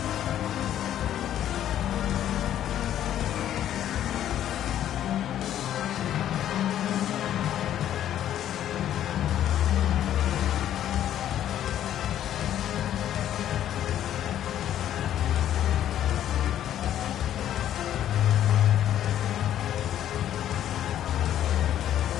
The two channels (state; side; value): quieter; right; 11.2 dB